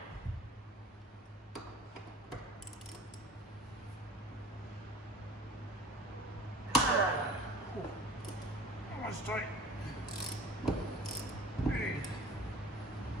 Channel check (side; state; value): both; normal; correlation 0.43